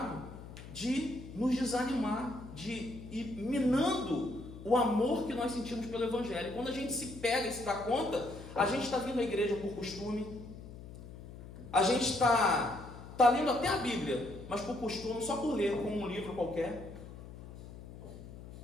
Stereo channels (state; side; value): noise; left; hum, 14 dB below the sound